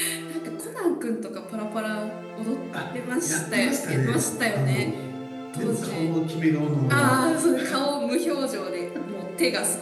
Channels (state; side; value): identical; both; correlation 1.00